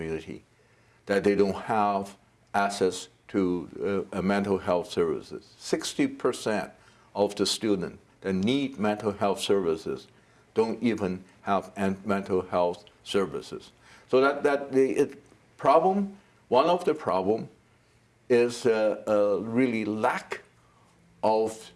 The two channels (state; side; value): identical; both; correlation 1.00